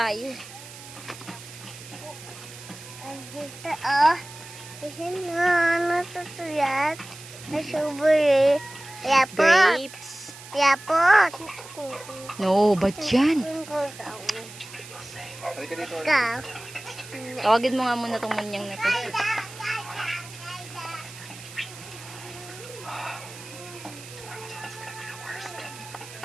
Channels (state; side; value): noise; right; hiss, 16 dB below the sound